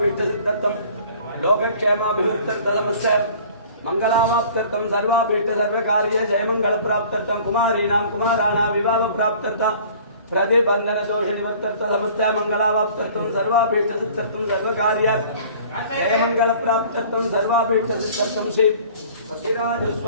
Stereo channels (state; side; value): inverted; both; correlation -0.49